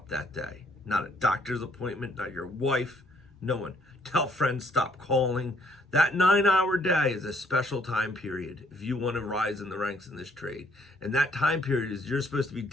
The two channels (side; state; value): both; normal; correlation 0.67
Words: that day. Not a doctor's appointment, not your wife, no one. Tell friends, stop calling. That 9-hour day is a special time period if you want to rise in the ranks in this trade. And that time period is you're supposed to be